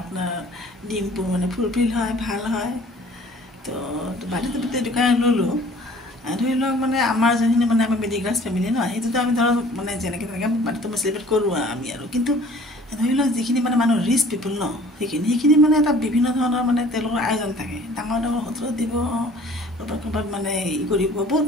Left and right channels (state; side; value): normal; both; correlation 0.51